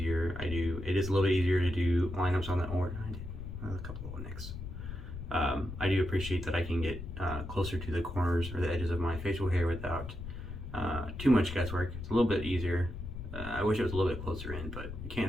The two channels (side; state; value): left; noise; rumble, 8 dB below the sound